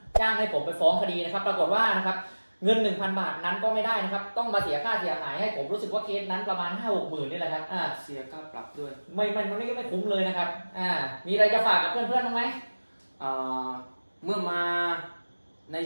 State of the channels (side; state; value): both; inverted; correlation -1.00